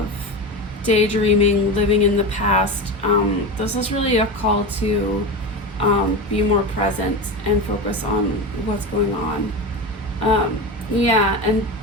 daydreaming, living in the past, this is really a call to be more present and focus on what's going on. And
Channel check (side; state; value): both; normal; correlation 0.23